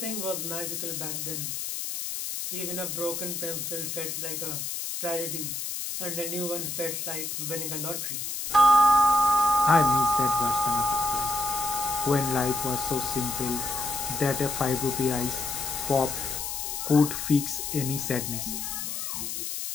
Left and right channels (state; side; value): noise; left; hiss, 4 dB below the sound